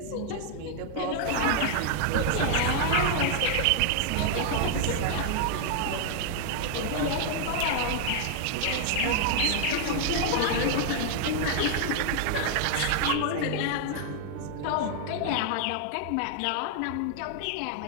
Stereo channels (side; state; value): both; different; correlation 0.00